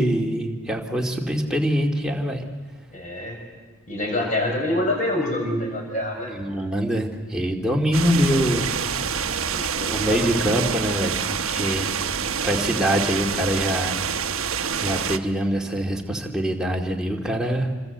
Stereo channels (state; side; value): normal; both; correlation 0.58